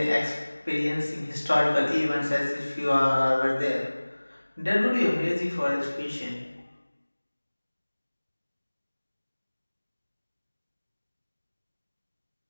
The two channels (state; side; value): inverted; both; correlation -1.00